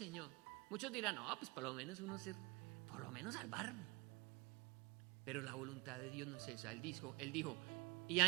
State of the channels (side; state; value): left; quieter; 24.6 dB